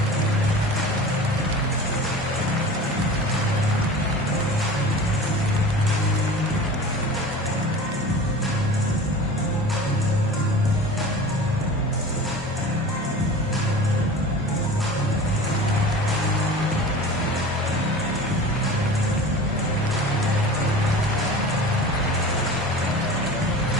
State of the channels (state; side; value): normal; both; correlation 0.37